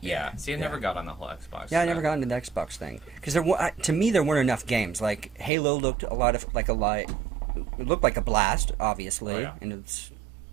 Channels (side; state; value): left; drops out; at 5.5 s